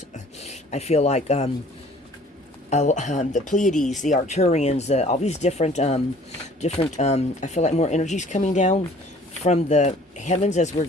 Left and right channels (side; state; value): both; normal; correlation 0.53